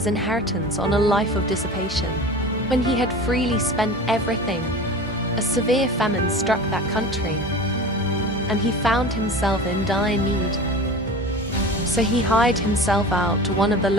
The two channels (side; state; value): both; normal; correlation 0.35